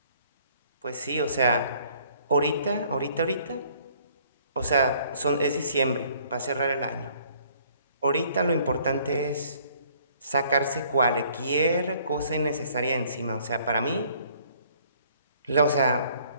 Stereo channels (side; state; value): both; inverted; correlation -0.61